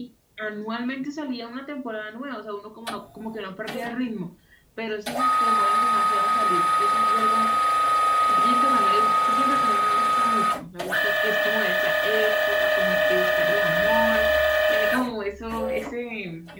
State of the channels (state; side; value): identical; both; correlation 1.00